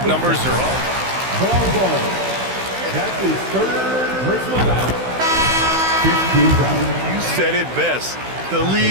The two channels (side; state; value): left; late; 16 ms